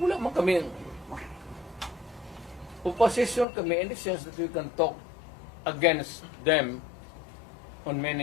man kami opposition kami in the sense that we can talk against them on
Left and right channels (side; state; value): right; drops out; at 3.5 s